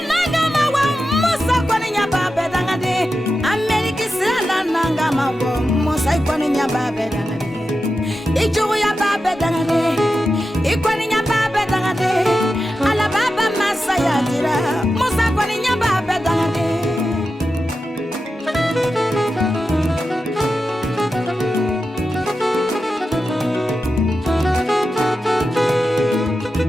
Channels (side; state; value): both; normal; correlation 0.90